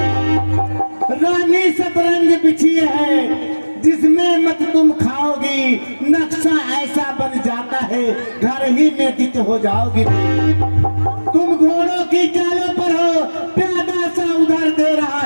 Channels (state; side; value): inverted; both; correlation -1.00